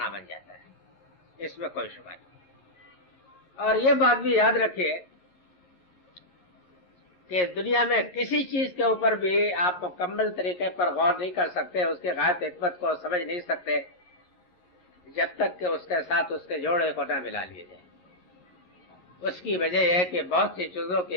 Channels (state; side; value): late; right; 11 ms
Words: بن جاتا ہے، اس میں کوئی شبہ نہیں۔ اور یہ بات بھی یاد رکھیے کہ دنیا میں کسی چیز کے اوپر بھی آپ مکمل طریقے پر غور نہیں کر سکتے، اس کی غائب حکمت کو سمجھ نہیں سکتے جب تک کہ اس کے ساتھ اس کے جوڑے کو نہ ملا لیے جائے۔ اس کی وجہ یہ ہے کہ بہت سی چیزوں